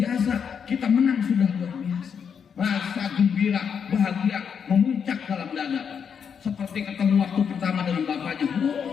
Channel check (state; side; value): quieter; right; 7.1 dB